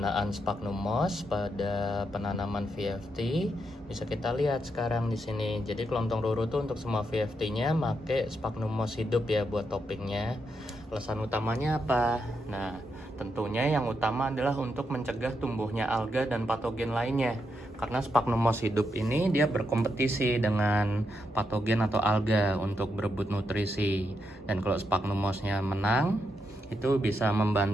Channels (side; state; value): both; normal; correlation 0.82